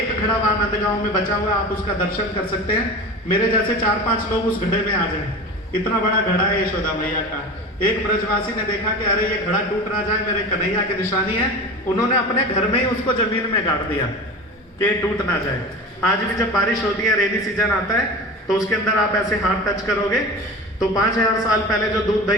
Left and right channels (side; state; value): both; normal; correlation 0.32